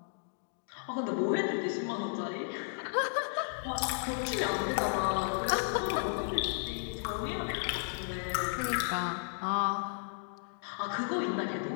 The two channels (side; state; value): right; silent; digital silence